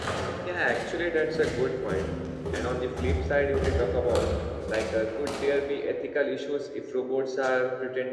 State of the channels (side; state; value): both; identical; correlation 1.00